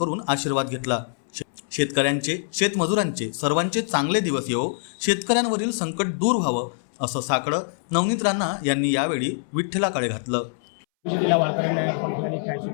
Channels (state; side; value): silent; right; 62 dB below the other